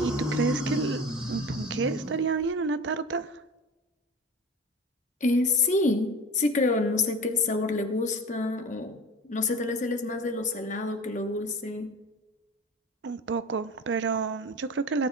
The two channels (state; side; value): normal; both; correlation 0.35